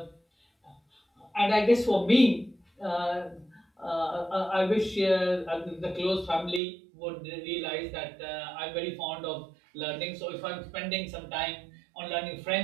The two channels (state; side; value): drops out; left; at 6.6 s